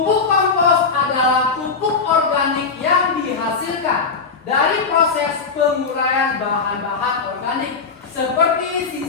kompos adalah pupuk organik yang dihasilkan dari proses penguraian bahan-bahan organik seperti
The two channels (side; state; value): right; quieter; 4.9 dB